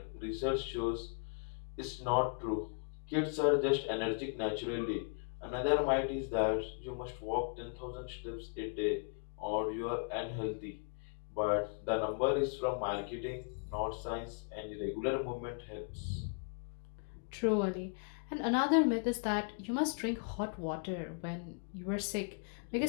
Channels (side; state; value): right; silent; 53 dB below the other